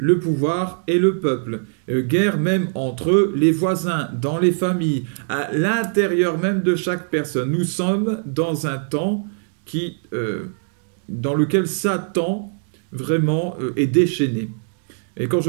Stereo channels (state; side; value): silent; left; digital silence